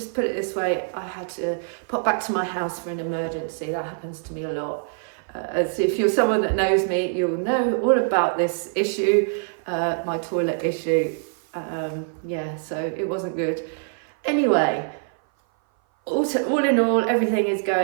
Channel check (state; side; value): silent; left; 57 dB below the other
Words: put it this way, I had to pop back to my house for an emergency. That happens to me a lot. So if you're someone that knows me, you'll know all about this issue, my toilet issue. Yeah, so it wasn't good. Anyway, all in all, everything is